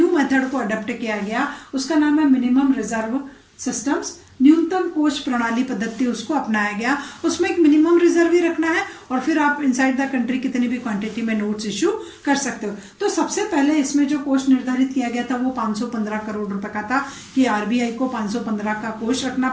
मेथड को अडॉप्ट किया गया, उसका नाम है मिनिमम रिजर्व सिस्टम्स, न्यूनतम कोष प्रणाली पद्धति उसको अपनाया गया। उसमें एक मिनिमम रिजर्व ही रखना है और फिर आप इनसाइड द कंट्री कितनी भी क्वांटिटी में नोट्स इश्यू कर सकते हो। तो सबसे पहले इसमें जो कोष निर्धारित किया गया था वो 515 करोड़ रुपए का था कि आरबीआई को 515 का कोष रखना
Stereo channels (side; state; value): both; identical; correlation 1.00